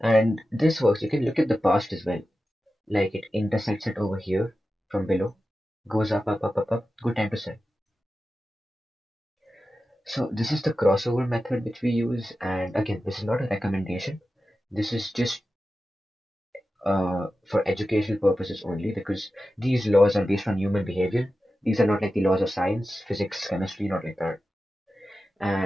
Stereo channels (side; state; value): both; normal; correlation 0.93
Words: And this works. You can look at the past as well. Like it intersects it over here from below, goes up, up, up, up, up. Good time to sell. So this is the crossover method which we use. And again, this is not a recommendation. This is just for educational purposes only, because these laws are based on human behavior. These are not like the laws of science, physics, chemistry, not like that.